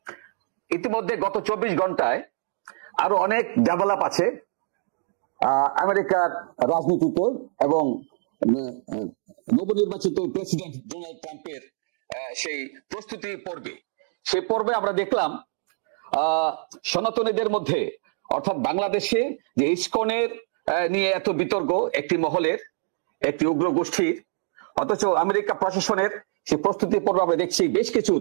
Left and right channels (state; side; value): silent; left; digital silence